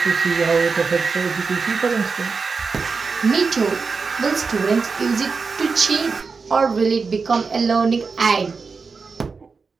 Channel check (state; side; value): quieter; left; 4.8 dB